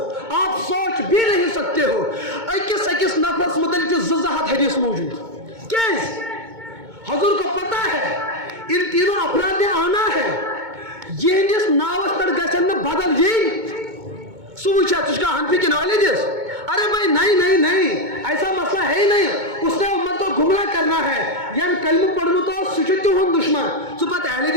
आप सोच भी नहीं सकते हो। अकिस अकिस नफरस मुतलिक 2 हदीस मौजूद। क्या हुजूर को पता है इन तीनों अपराध ने आना है, यहस नावस पर गन बदल यही सुचा तुझका हनफी की नॉलेज। अरे भाई नहीं नहीं नहीं, ऐसा मसला है ही नहीं। उसने उम्मत को गुमराह करना है। यान कलम पढ़ू तो सुचित हो दुश्मन सु पता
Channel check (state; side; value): late; left; 2.2 ms